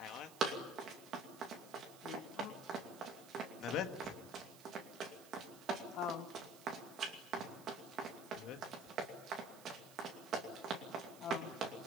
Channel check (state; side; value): noise; right; hiss, 18 dB below the sound